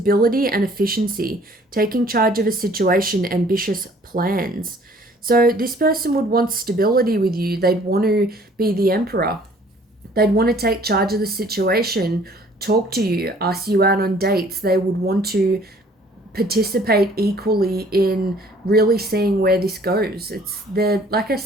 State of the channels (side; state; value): both; normal; correlation 0.56